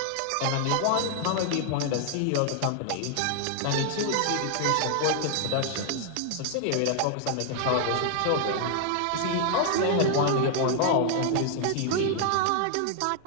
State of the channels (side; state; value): both; different; correlation 0.00